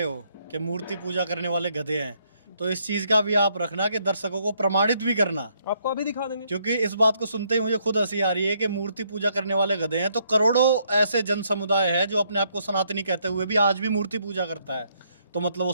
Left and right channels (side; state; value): both; inverted; correlation -0.71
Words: हो कि मूर्ति पूजा करने वाले गधे हैं, तो इस चीज का भी आप रखना कि दर्शकों को प्रमाणित भी करना। आपको अभी दिखा देंगे, क्योंकि इस बात को सुनते ही मुझे खुद हंसी आ रही है कि मूर्ति पूजा करने वाले गधे हैं, तो करोड़ों ऐसे जन समुदाय है जो अपने आप को सनातनी कहते हुए भी आज भी मूर्ति पूजा करता है, तो मतलब वो